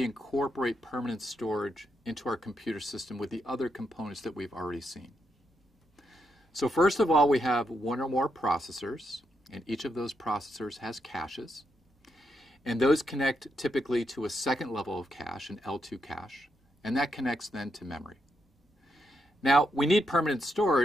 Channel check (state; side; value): normal; both; correlation 0.81